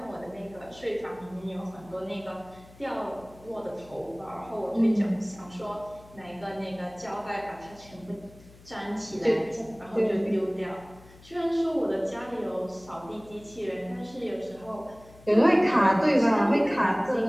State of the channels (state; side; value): noise; left; hum, 23 dB below the sound